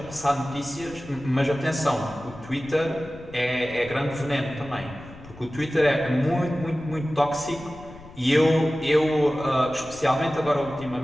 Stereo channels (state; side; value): noise; left; rumble, 19 dB below the sound